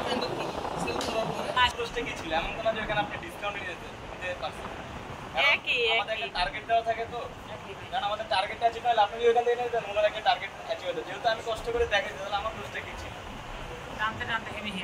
প্রশ্ন কি ছিল? এমন কোনো যে এখানে আপনি ডিসকাউন্ট দিতে পারছেন? একই আমাদের একই একটা টার্গেট দেওয়া থাকে তো, কারণ আমাদের টার্গেটটা অ্যাচিভ হলে আপনি যদি ওখান থেকে নিতেন, ওনার একটা টার্গেট অ্যাচিভ হতো। যেহেতু আমি কষ্ট করে দেখাই, তাহলে আমার দোষটা কি ছিল? টানতে টানতে হেভি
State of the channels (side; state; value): both; identical; correlation 1.00